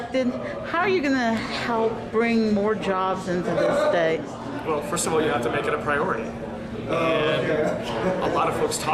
how are you going to help bring more jobs into this state? Well, first of all, you have to make it a priority. And a lot of folks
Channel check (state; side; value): identical; both; correlation 1.00